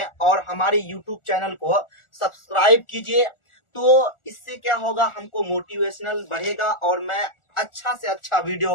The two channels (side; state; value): right; late; 1.4 ms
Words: और हमारे यूट्यूब चैनल को सब्सक्राइब कीजिए। तो इससे क्या होगा, हमको मोटिवेशनल बढ़ेगा और मैं अच्छा से अच्छा वीडियो